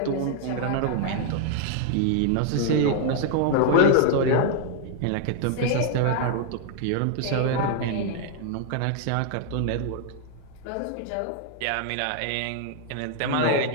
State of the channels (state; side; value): different; both; correlation 0.00